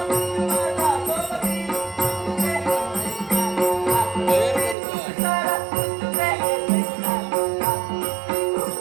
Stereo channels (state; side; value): drops out; left; at 4.8 s